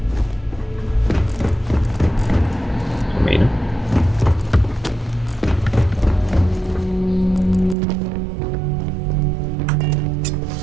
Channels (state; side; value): drops out; left; at 7.8 s